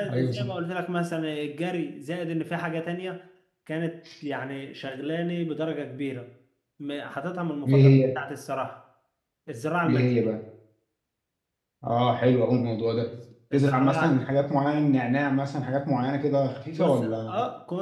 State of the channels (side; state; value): both; identical; correlation 1.00